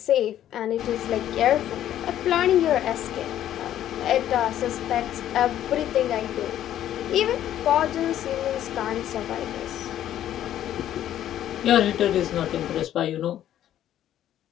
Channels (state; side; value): quieter; right; 11.7 dB